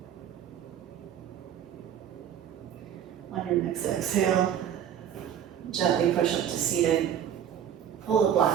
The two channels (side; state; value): left; quieter; 9.4 dB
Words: On your next exhale, gently push up to seated. Pull the